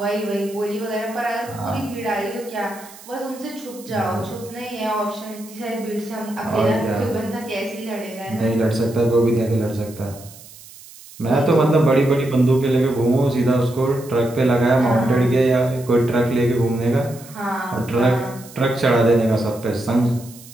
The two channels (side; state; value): right; noise; hiss, 20 dB below the sound